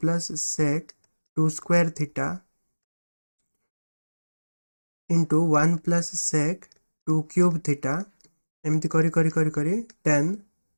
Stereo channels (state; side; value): inverted; both; correlation -1.00